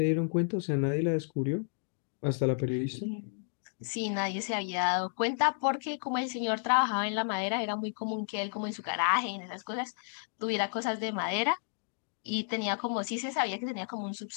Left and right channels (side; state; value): right; silent; digital silence